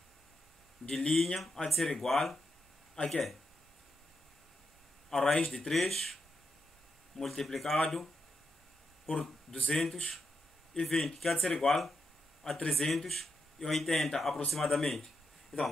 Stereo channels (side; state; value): both; normal; correlation 0.84